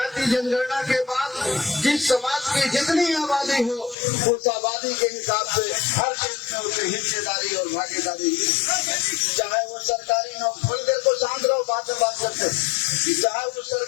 जनगणना के बाद जिस समाज की जितनी आबादी हो उस आबादी के हिसाब से हर क्षेत्र में उसे हिस्सेदारी और भागीदारी, चाहे वो सरकारी नौकरी, थोड़ी देर को शांत रहो, बात करते, चाहे वो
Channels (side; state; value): right; drops out; at 4.0 s